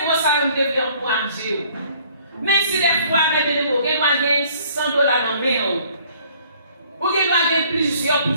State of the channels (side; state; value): both; inverted; correlation -0.58